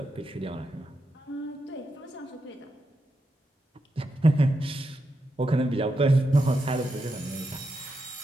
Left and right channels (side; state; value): both; normal; correlation 0.85